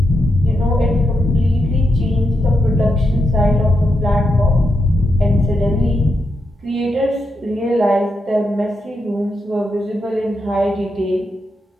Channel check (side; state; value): both; normal; correlation 0.84